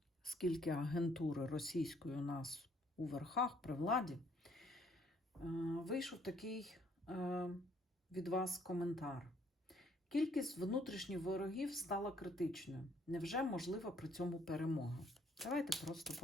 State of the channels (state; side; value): normal; both; correlation 0.65